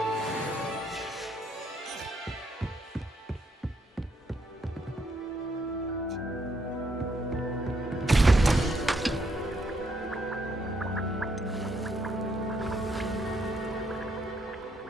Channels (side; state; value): both; normal; correlation 0.74